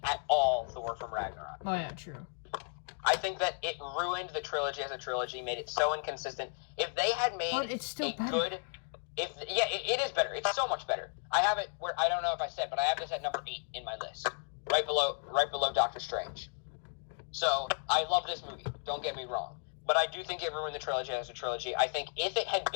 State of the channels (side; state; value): right; silent; 55 dB below the other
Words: at all Thor from Ragnarok. Oh, yeah, true. I think that it ruined the trilogy as a trilogy, made it so inconsistent. If they had made But it's still better. it is better. It's so much better. I have it where, I don't know if I said, but I have this at number 8 in my list, right below Doctor Strange. So I love this movie. Don't get me wrong, but I do think it ruined the trilogy as a trilogy. I think if it